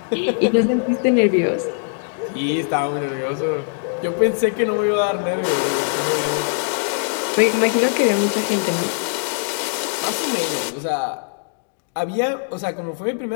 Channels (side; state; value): right; silent; digital silence